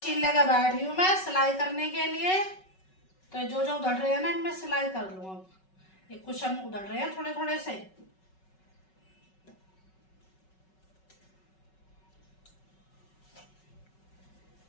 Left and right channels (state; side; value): late; right; 5.3 ms